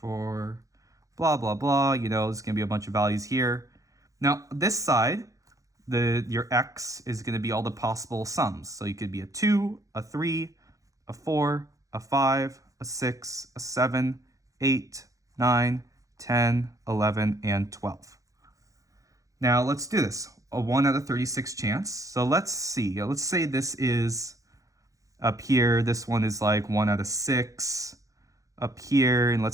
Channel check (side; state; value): left; late; 0.16 ms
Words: blah, blah, blah, there's going to be a bunch of values here. Now, this side, your x is going to be all the possible sums. So you could be a 2, a 3, a 4, a 5, a 6, a 7, 8, 9, 10, 11, and 12. Now let's do this. A 1 out of 36 chance. So let's see. Let's say this is Up here, this one is like 1 out of 6. Up here, and